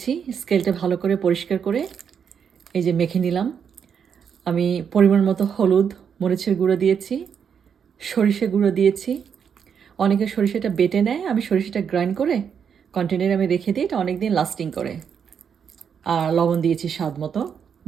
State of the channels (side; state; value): left; quieter; 7.3 dB